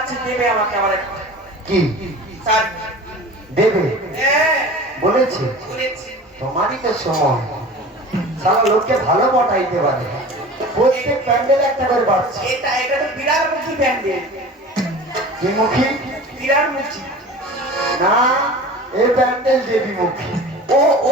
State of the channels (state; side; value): normal; both; correlation 0.38